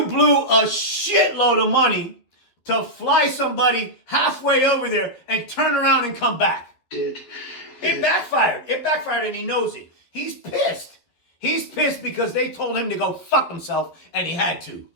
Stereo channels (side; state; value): right; late; 12 ms